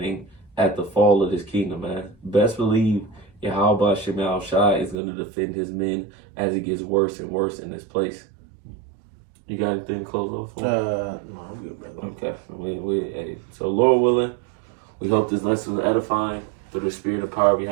at the fall of this kingdom, man. Best believe Yahweh Shema Shai is going to defend his men as it gets worse and worse in this place. You got anything to close off for? No, I'm good, brother. Okay. So Lord willing, we hope this lesson was edifying through the spirit and power of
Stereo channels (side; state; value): left; drops out; at 5.0 s